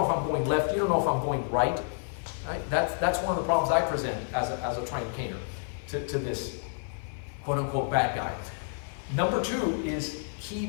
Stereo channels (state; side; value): silent; right; 56 dB below the other